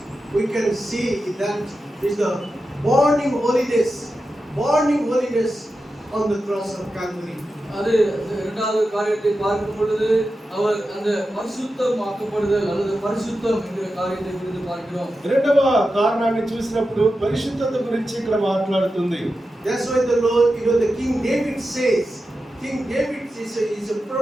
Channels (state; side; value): normal; both; correlation 0.91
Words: we can see that is the burning holiness on the cross of Calvary. அது இரண்டாவது காரியத்தை பார்க்கும் பொழுது அவர் அந்த பரிசுத்தமாக்கப்படுதல் அல்லது பரிசுத்தம் என்கிற காரியத்தை குறித்து பார்க்கிறோம். రెండవ కారణాన్ని చూసినప్పుడు పరిశుద్ధత గురించి ఇక్కడ మాట్లాడుతుంది. That's why the Lord, the King David says, is a